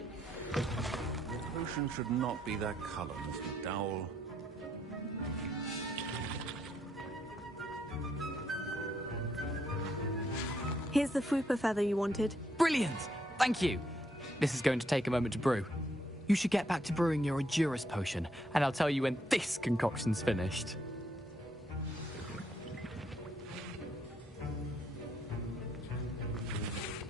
The potion should not be that color, Miss McDowell. Here's the Fwooper feather you wanted. Brilliant! Thank you! This is going to take a moment to brew. You should get back to brewing your Edurus potion, and I'll tell you when this concoction's finished.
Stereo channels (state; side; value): normal; both; correlation 0.73